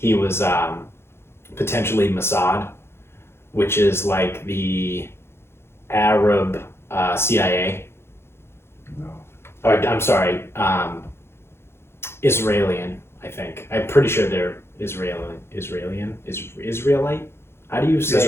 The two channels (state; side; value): late; right; 0.12 ms